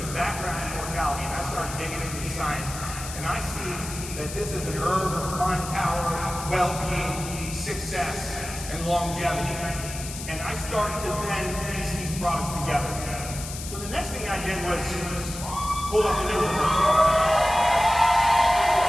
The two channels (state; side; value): noise; left; hiss, 10 dB below the sound